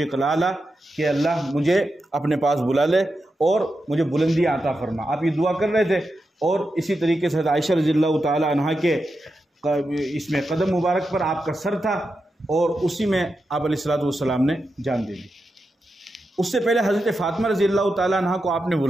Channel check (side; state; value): both; normal; correlation 0.88